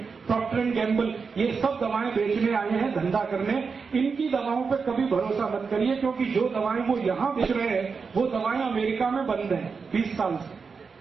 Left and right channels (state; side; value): quieter; left; 5.2 dB